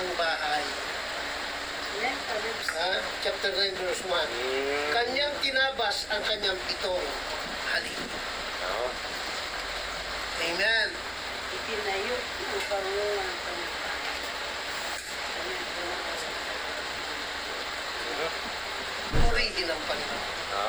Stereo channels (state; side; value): identical; both; correlation 1.00